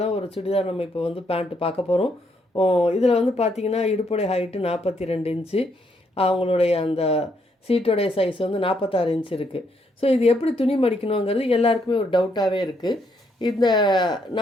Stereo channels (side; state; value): both; normal; correlation 0.74